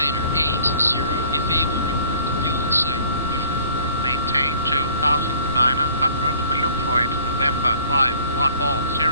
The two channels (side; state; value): both; inverted; correlation -0.52